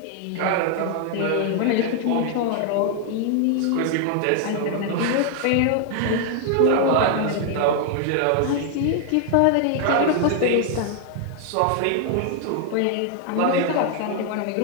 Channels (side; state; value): both; different; correlation 0.00